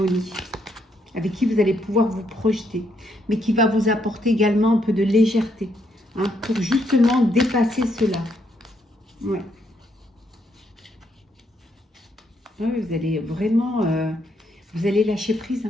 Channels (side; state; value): both; normal; correlation 0.75